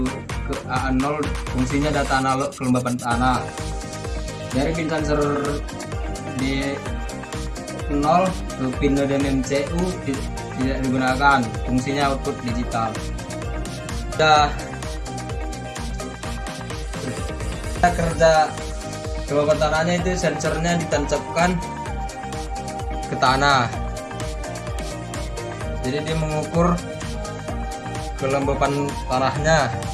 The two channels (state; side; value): identical; both; correlation 1.00